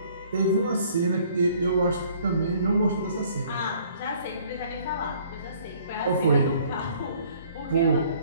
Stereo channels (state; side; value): inverted; both; correlation -0.58